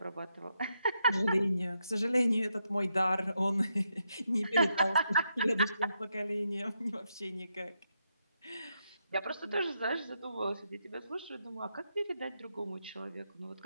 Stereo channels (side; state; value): both; inverted; correlation -0.82